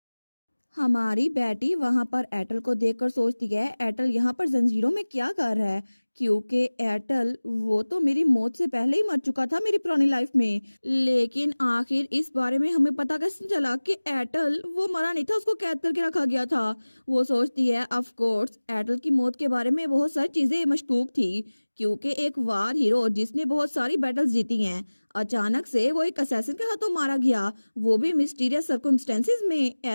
हमारी बेटी वहां पर एटल को देखकर सोचती है एटल यहाँ पर जंजीरों में क्या कर रहा है, क्योंकि एटल वो तो मेरी मौत से पहले ही मर चुका था मेरी पुरानी लाइफ में। लेकिन आखिर इस बारे में हमें पता कैसे चला कि एटल वो मरा नहीं था, उसको कैद करके रखा गया था। वो सोचती है ऑफ कोर्स एटल की मौत के बारे में बहुत सारी चीजें मशकूक थी, क्योंकि एक वार हीरो जिसने बहुत सारी बैटल्स जीती हैं, अचानक से वो एक असैसिन के हाथों मारा गया, वो भी मिस्टीरियस सर्कमस्टेंसेस में।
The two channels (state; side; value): inverted; both; correlation -1.00